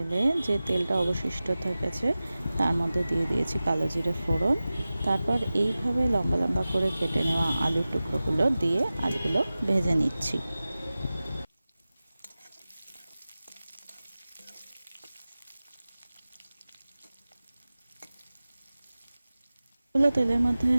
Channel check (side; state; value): both; inverted; correlation -0.96